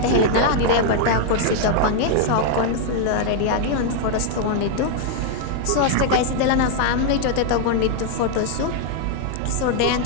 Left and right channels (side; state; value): both; different; correlation 0.00